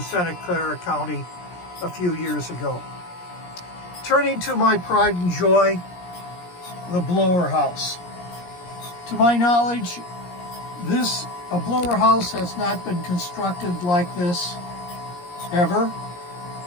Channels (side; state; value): right; late; 17 ms